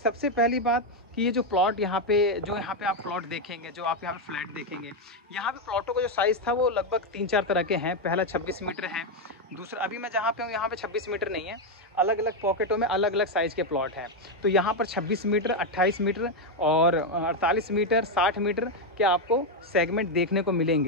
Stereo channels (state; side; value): normal; both; correlation 0.04